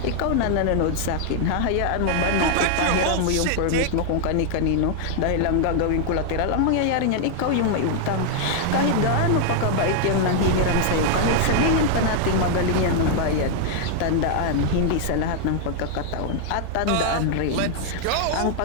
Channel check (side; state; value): both; different; correlation 0.00